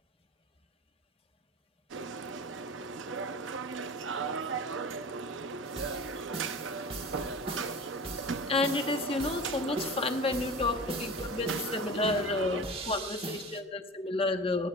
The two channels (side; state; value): both; normal; correlation 0.34